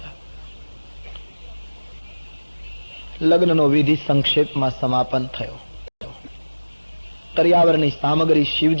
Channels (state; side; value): inverted; both; correlation -1.00